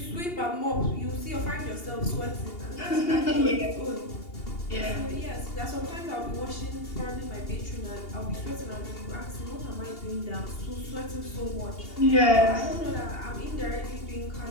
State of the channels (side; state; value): right; late; 2.8 ms